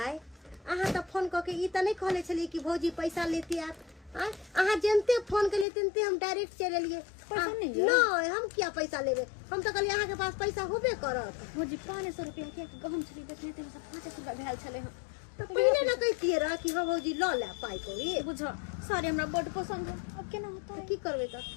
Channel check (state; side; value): drops out; right; at 5.7 s